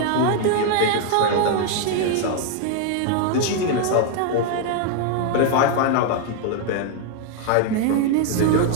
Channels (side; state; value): both; different; correlation 0.00